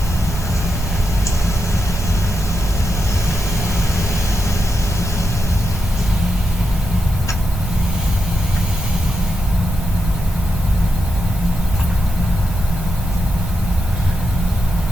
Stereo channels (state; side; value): normal; both; correlation 0.86